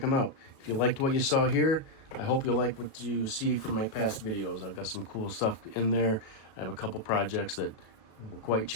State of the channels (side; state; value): right; late; 37 ms